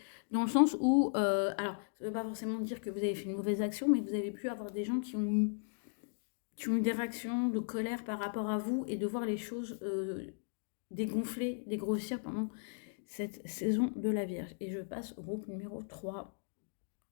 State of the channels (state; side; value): silent; right; digital silence